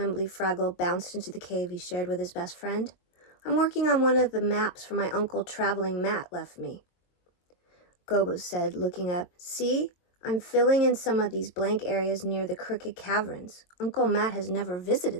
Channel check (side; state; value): right; late; 22 ms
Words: Fraggle bounced into the cave he shared with his best friend. I'm working on one of the maps for my uncle Traveling Matt left me. Gobo said, looking up. See? I'm filling in some of these blank areas near the Crooked Caverns. Uncle Matt has never